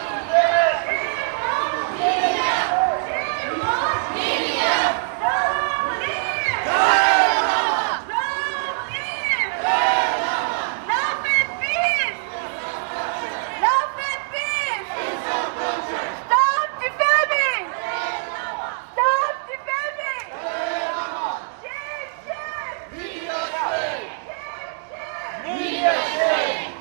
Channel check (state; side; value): silent; left; digital silence